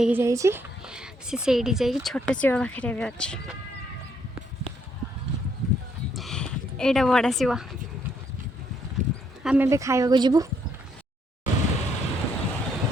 जाइए जा छोट शिव पाखे भी अच्छे यहाँ बड़ा शिव आम ए खाइबा जीवु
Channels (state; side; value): normal; both; correlation 0.71